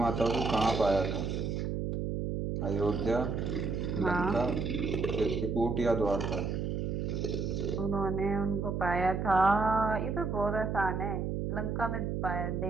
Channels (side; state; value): right; noise; hum, 1 dB below the sound